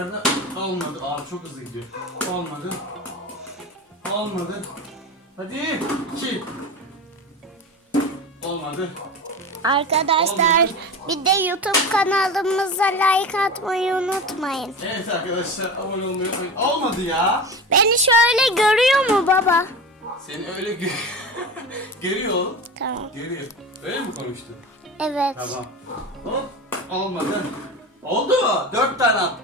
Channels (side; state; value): both; normal; correlation 0.28